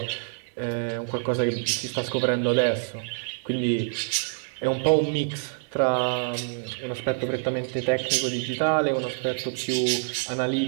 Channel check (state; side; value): silent; left; digital silence